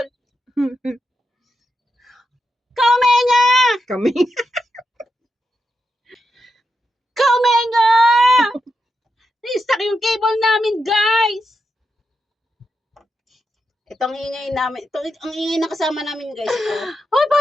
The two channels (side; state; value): both; normal; correlation 0.86